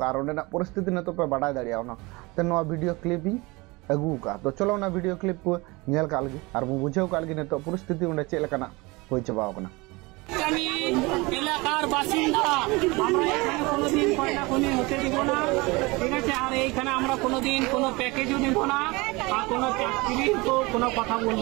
परिस्थिति ने तो पे बाडा दाड़ा वीडियो क्लिप अगू का तो चलो ना वीडियो क्लिप को नेल का लगी और बुझे का लगी तो परिस्थिति उन्हें चेलकाना हो चाबा এলাকার বাসিন্দা আমরা এখানে কোনোদিন কয়লা খনি হতে দিব না, ঠিক আছে। আর এইখানে আমরা কোনোদিন কোনো প্যাকেজও দিব না আর কোনো চাকরির তো কোনো কথা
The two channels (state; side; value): quieter; left; 24.4 dB